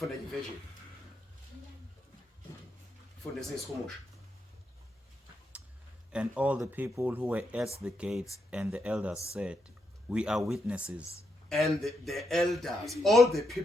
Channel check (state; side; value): normal; both; correlation 0.82